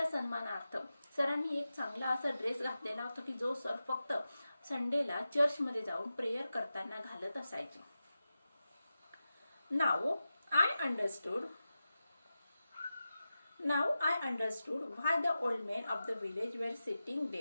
सन्मानार्थ सरांनी एक चांगला असा ड्रेस घातलेला होता की जो सर फक्त संडेला चर्चमध्ये जाऊन प्रेयर करताना घालत असायचे. Now I understood why the old men of the village were sitting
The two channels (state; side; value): inverted; both; correlation -0.93